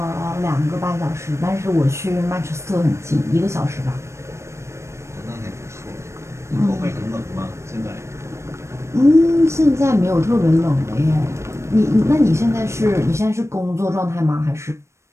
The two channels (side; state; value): left; late; 0.13 ms